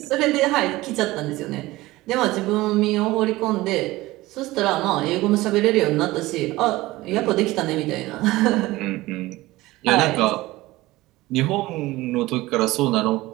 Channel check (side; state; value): left; quieter; 18.8 dB